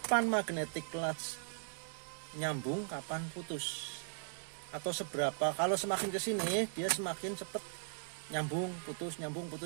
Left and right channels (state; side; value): silent; left; digital silence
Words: magnetic clutch nyambung, kapan putus. Atau seberapa. Kalau semakin ke sini dia semakin cepat nyambung, putus, nyambung,